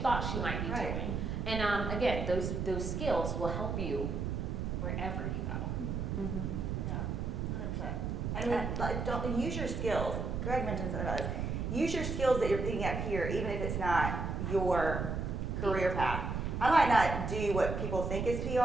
she might be doing. And again, those skills will help you wherever you go. Mm-hmm. I mean, don't use your skills. Greg mentioned something about this. Use your skills that you're picking up here, even if it's not your career path. I might not do what people think is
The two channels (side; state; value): right; noise; rumble, 2 dB below the sound